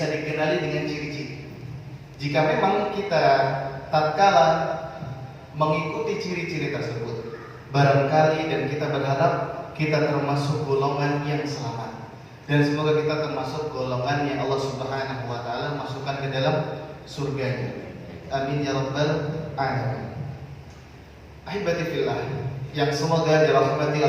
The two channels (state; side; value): identical; both; correlation 1.00